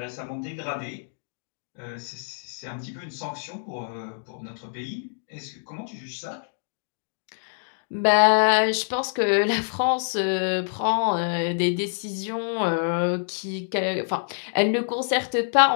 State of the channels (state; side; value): silent; right; digital silence